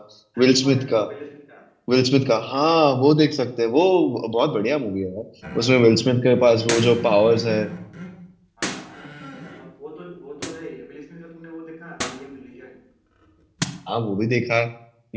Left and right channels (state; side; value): identical; both; correlation 1.00